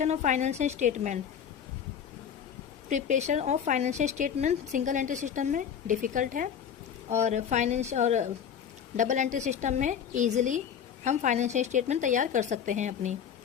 of financial statement single entry system में डिफ़िकल्ट है और डबल एंट्री सिस्टम में ईजिली हम फाइनेंशियल स्टेटमेंट तैयार कर सकते हैं अपनी।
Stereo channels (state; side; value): quieter; right; 8.1 dB